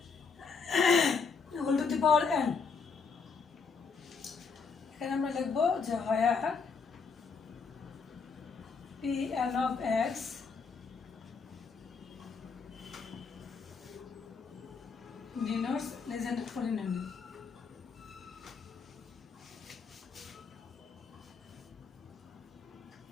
whole to the power n। এখানে আমরা লিখবো যে হয় P N of x denotes legendary polynomial।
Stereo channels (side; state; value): right; quieter; 5.2 dB